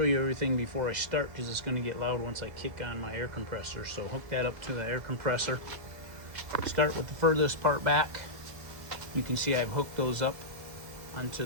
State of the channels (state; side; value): late; left; 2.0 ms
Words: you everything before I start because it's going to get loud once I kick on my air compressor. So hook that up to the air compressor. Start with the furthest part back. You can see I've hooked those up onto